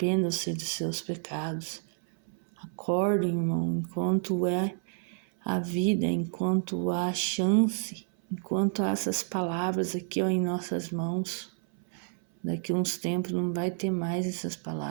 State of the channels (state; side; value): silent; left; 58 dB below the other